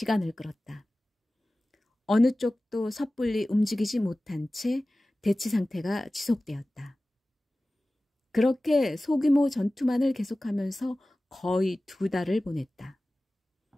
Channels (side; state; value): both; normal; correlation 0.97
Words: 끌었다. 어느 쪽도 섣불리 움직이지 못한 채 대치 상태가 지속되었다. 그렇게 소규모 전투만을 계속하면서 거의 2달을 보냈다.